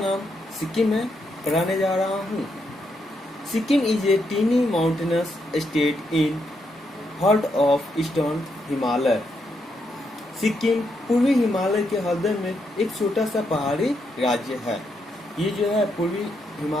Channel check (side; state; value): both; normal; correlation 0.79